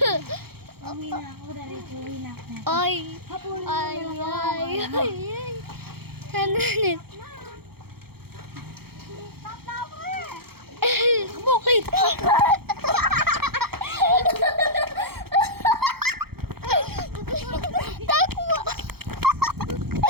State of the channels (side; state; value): left; late; 0.96 ms